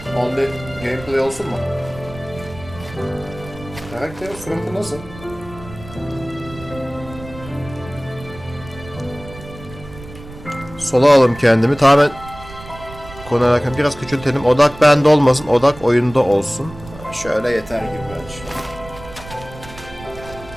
Only gameplay olsun mu? Karakterin suratı nasıl? Sola alayım kendimi. Tamamen konu alakalı biraz küçültelim. Odak bende olmasın. Odak oyunda olsun. Şöyle yeter gibi bence.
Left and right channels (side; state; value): right; noise; rumble, 16 dB below the sound